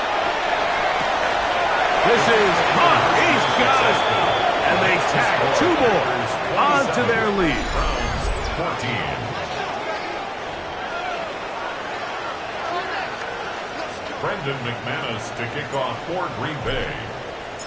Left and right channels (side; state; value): both; identical; correlation 1.00